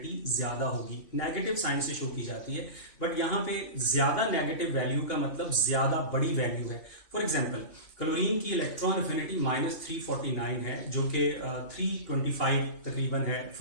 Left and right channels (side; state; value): right; late; 3.0 ms